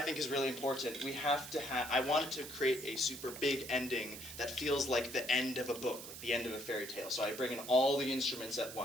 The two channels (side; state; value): right; noise; hiss, 11 dB below the sound